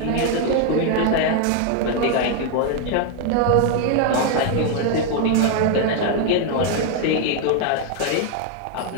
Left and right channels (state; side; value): different; both; correlation 0.01